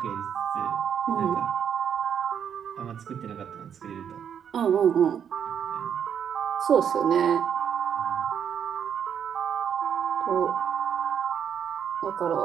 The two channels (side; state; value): left; quieter; 8.2 dB